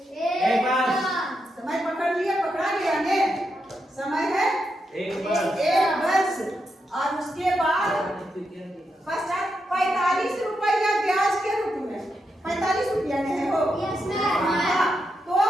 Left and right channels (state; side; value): normal; both; correlation 0.84